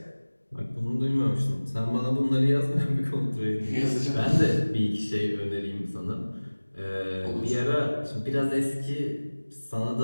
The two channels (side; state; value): both; inverted; correlation -1.00